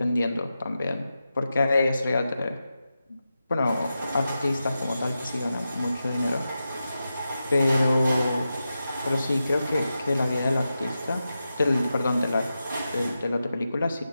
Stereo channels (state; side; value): inverted; both; correlation -0.91